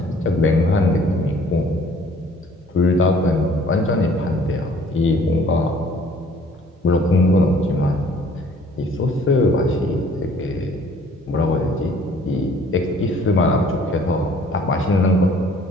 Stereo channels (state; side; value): normal; both; correlation 0.56